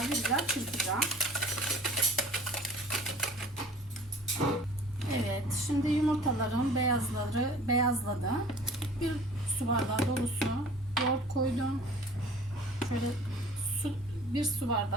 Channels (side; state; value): both; normal; correlation 0.47